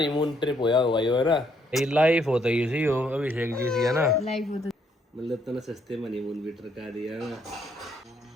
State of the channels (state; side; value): normal; both; correlation 0.71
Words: ट्रिप होया हुआ है ना, ये लाइफ होता ही इसी हो अभिषेक जी सी है ना, लाइफ होता मतलब इतना सस्ते में हनीमून भी ट्रका दिया ना,